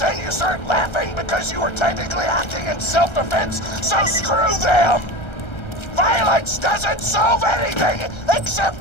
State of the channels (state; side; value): late; right; 1.3 ms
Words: you start laughing because you were technically acting in self-defense, so screw them! Violence doesn't solve anything, except